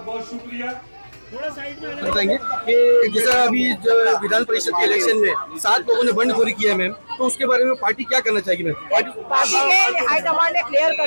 बहुत शुक्रिया। बताएंगे कि जैसा अभी जो विधान परिषद के इलेक्शन में 7 लोगों ने बंडखोरी किया है मैम, तो उसके बारे में पार्टी क्या करना चाहेगी मैम? पार्टी के हाईकमान ने क्लियर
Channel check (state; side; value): inverted; both; correlation -1.00